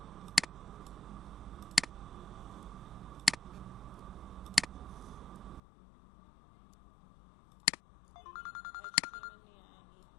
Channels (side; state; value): right; drops out; at 5.6 s